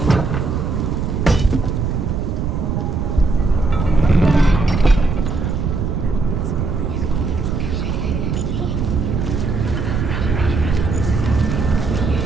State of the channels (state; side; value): noise; right; rumble, 1 dB below the sound